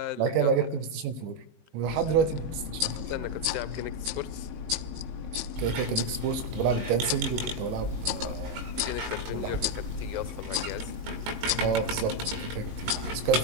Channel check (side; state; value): left; late; 19 ms